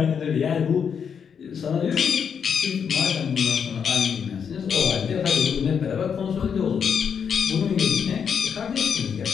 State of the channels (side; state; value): right; quieter; 7.1 dB